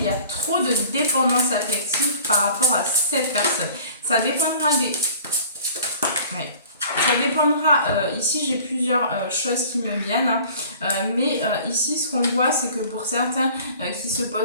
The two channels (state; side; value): inverted; both; correlation -0.48